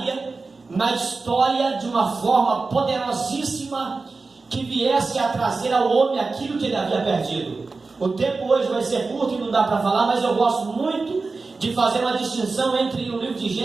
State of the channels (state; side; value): quieter; left; 4.0 dB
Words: na história de uma forma poderosíssima, que viesse a trazer ao homem aquilo que ele havia perdido. O tempo hoje vai ser curto e não dá para falar, mas eu gosto muito de fazer uma distinção entre o livro de